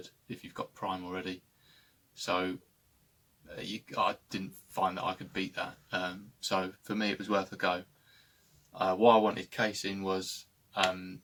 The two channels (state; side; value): identical; both; correlation 1.00